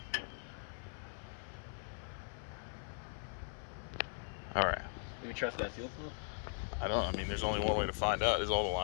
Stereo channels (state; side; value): silent; right; 51 dB below the other